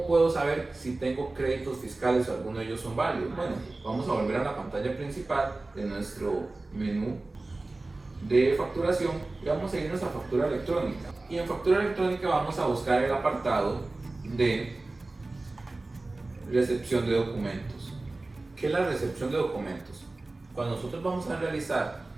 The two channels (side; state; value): left; quieter; 3.1 dB